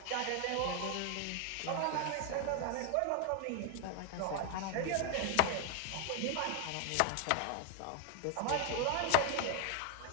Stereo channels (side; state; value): both; different; correlation 0.01